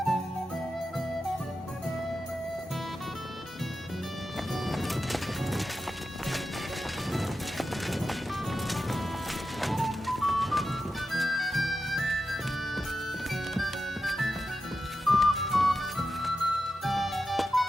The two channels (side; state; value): both; normal; correlation 0.90